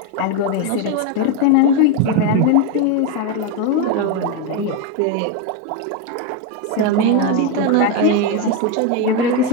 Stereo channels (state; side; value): different; both; correlation 0.03